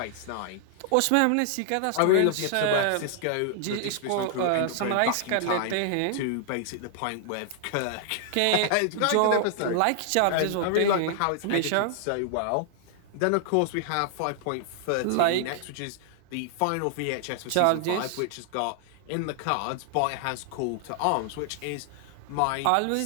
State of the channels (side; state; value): both; different; correlation 0.00